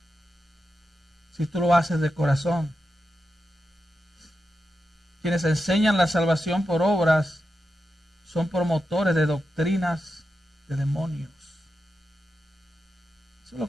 Si tú lo haces de corazón. Quienes enseñan la salvación por obras son promotores de doctrinas de demonios. Eso es lo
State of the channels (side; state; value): both; normal; correlation 0.89